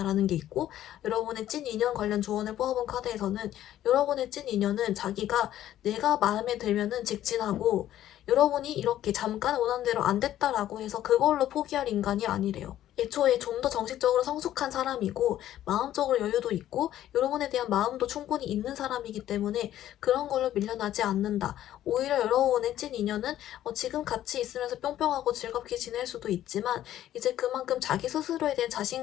게 있고, 여러분의 찐 인연 관련 조언을 뽑아본 카드에서는 여러분의 찐 인연은 자기가 내가 마음에 들면은 직진하고, 여러분이 이렇게 잠깐 원하는 대로 안 됐다라고 해서 그걸로 포기할 인간이 아니래요. 애초에 좀 더 정식적으로 성숙한 사람이고 마음적으로 여유도 있고 여러분에 대한 마음도 충분히 있는 사람이기 때문에 그런 걸로 밀려나지 않는다. 오히려 여러분의 찐 인연은 지금 같이 있으면서 뿅뿅하고 즐겁게 지낼 수도 있지만 이제 그만큼 자기 스스로에 대한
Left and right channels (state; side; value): quieter; right; 12.5 dB